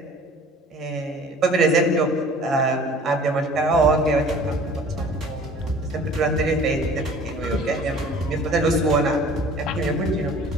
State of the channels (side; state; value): both; normal; correlation 0.47